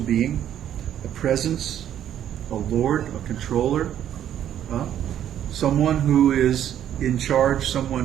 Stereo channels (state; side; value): quieter; left; 10.5 dB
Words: a presence, a Lord, a controller, someone who is in charge,